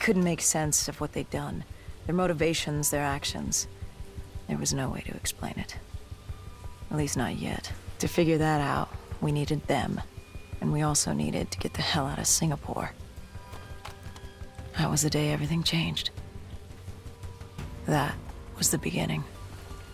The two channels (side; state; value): both; identical; correlation 1.00